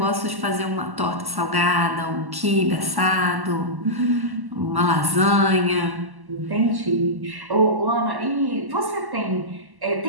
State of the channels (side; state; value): left; late; 1.1 ms